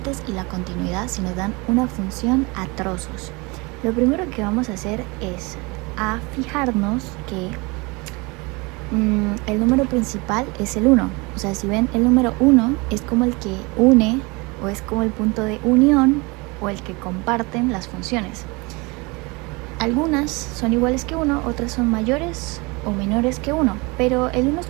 y la continuidad si nos dan una función a trozos. Lo primero que vamos a hacer es a fijarnos que el número principal es el 1. O sea, si ven, el número 1 es como el que une o es como el punto de unión o el que comparten las funciones. Algunas son iguales que 1, otras son mayores o menores que 1, pero el 1 es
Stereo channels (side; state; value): left; quieter; 26.6 dB